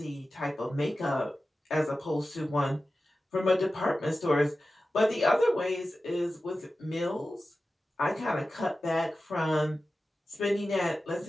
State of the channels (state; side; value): normal; both; correlation 0.94